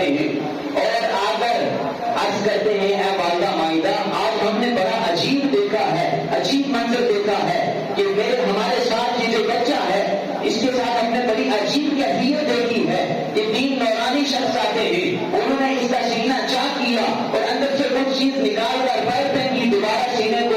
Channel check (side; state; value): both; identical; correlation 1.00